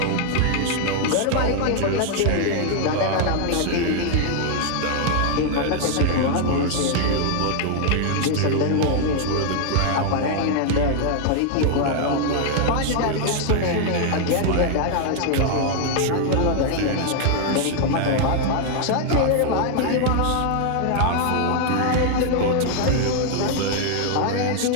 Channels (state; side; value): different; both; correlation 0.00